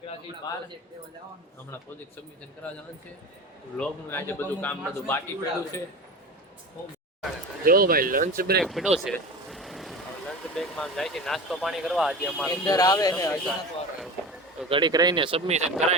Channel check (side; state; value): both; normal; correlation 0.31